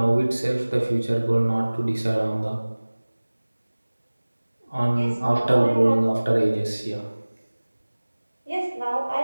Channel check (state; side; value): inverted; both; correlation -1.00